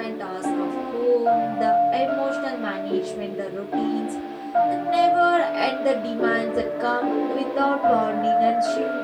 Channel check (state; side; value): identical; both; correlation 1.00